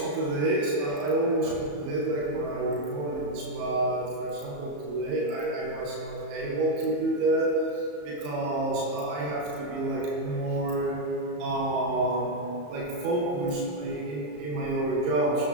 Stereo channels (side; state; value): left; late; 34 ms